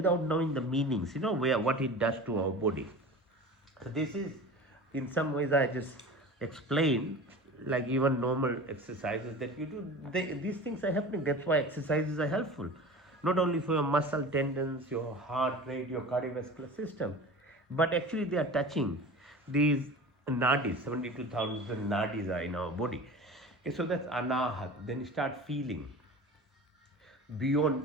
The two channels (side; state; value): both; normal; correlation 0.36